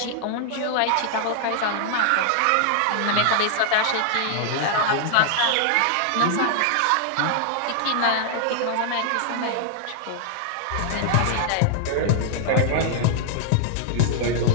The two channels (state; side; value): different; both; correlation -0.01